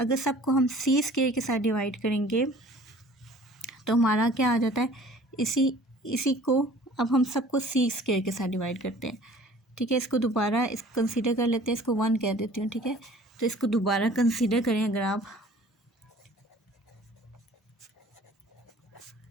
सबको हम सी स्क्वायर के साथ डिवाइड करेंगे तो हमारा क्या आ जाता है? इसी को अब हम सबको सी स्क्वायर के साथ डिवाइड करते हैं, ठीक है। इसको दोबारा कंसीडर कर लेते हैं, इसको 1 कह देती हूँ, ठीक है। तो इसको दोबारा कंसीडर करें, अगर आप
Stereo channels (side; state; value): both; normal; correlation 0.49